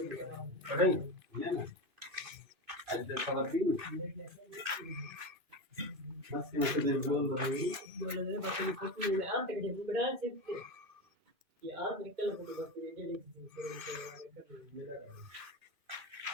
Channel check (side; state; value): left; late; 2.5 ms